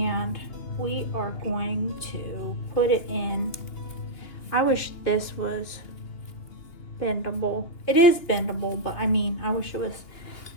we are going to put it in. I wish this was bendable. It is bendable, but I mean, I wish it was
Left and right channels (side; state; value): right; late; 2.5 ms